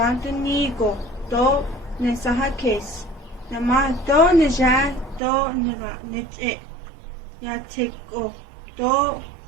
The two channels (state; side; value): drops out; left; at 5.2 s